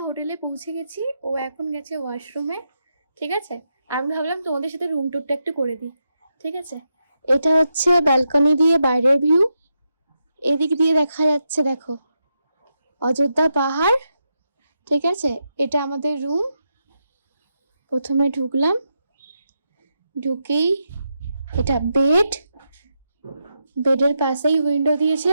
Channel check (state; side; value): inverted; both; correlation -0.84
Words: হোটেলে পৌঁছে গেছি, ও এখন গেছে ওয়াশরুমে। ঠিক আছে, আমি ভাবলাম তোমাদের সাথে রুম টুরটা একটু করে দিই। ঠিক আছে, এটা হচ্ছে ব্যালকনি দিয়ে বাইরের ভিউ। এদিক দিয়ে দেখা যাচ্ছে, দেখো, অযোধ্যা পাহাড়। ঠিক আছে, এটা আমাদের রুম। প্রথমে ঢুকলাম, ঢুকেই এটা বেড, বেডের পাশেই উইন্ডো দিয়েছে।